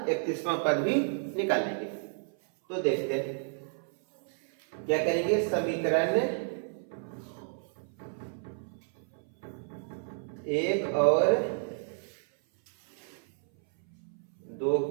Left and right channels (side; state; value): left; silent; 57 dB below the other